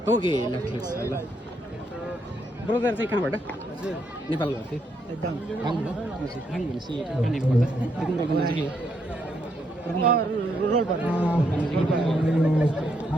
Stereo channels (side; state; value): both; normal; correlation 0.76